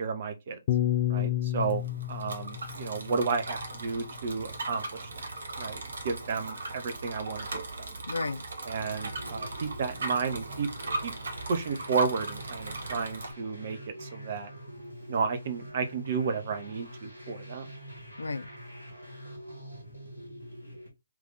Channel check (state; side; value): inverted; both; correlation -0.51